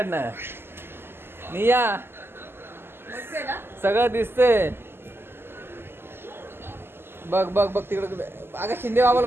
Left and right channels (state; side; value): late; left; 0.11 ms